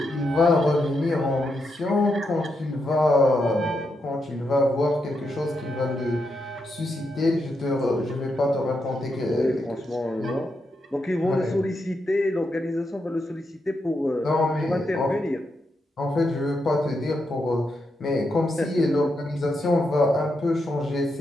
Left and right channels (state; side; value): normal; both; correlation 0.83